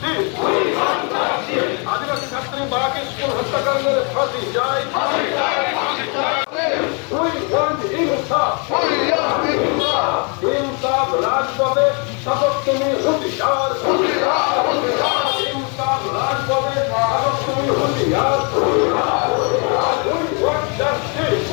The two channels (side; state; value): right; quieter; 35.8 dB